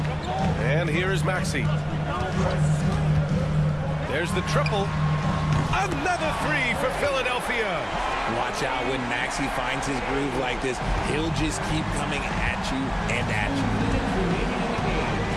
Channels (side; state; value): both; identical; correlation 1.00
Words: And here is Maxey. There's the triple. Another three for Philadelphia. Watch out when Maxey finds his groove like this. He'll just keep coming at you and at you.